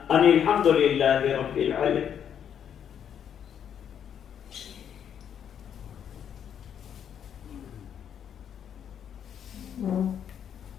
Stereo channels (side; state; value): right; quieter; 8.7 dB